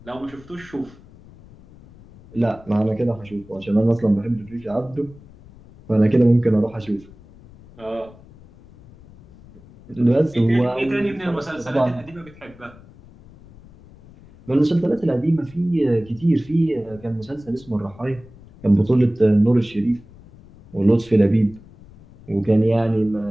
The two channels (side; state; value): left; noise; rumble, 23 dB below the sound